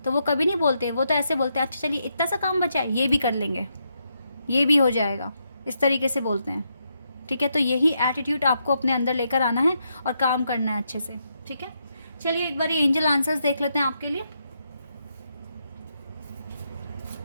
तो वो कभी नहीं बोलते, वो तो ऐसे बोलते हैं अच्छा चलिए इतना सा काम बचा है, ये भी कर लेंगे, ये भी हो जाएगा, इस तरीके से बोलते हैं। ठीक है, तो यही एटीट्यूड आपको अपने अंदर लेकर आना है और काम करना है अच्छे से। ठीक है, चलिए एक बार ये एंजल आंसर्स देख लेते हैं आपके लिए।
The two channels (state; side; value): inverted; both; correlation -0.80